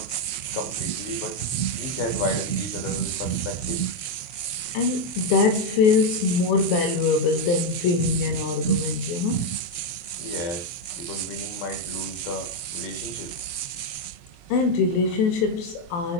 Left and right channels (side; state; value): right; late; 23 ms